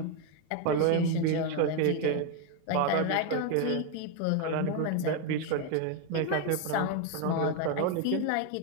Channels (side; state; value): both; different; correlation 0.02